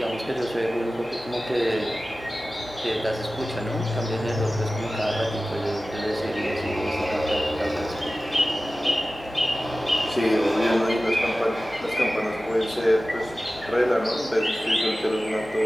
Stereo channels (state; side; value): noise; left; hum, 23 dB below the sound